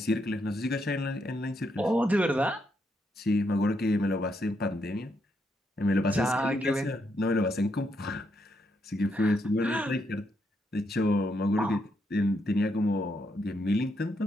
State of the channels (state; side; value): normal; both; correlation 0.78